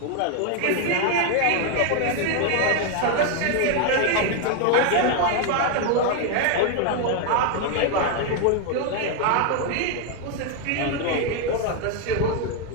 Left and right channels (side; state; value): both; different; correlation 0.01